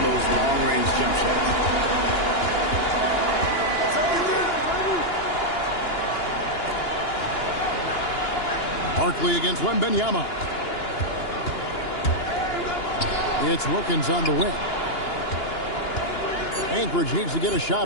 those long-range jump shots. Barkley against Wembanyama. It's Wilkins on the wing. Anchorage needs to get a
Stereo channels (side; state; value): right; late; 2.9 ms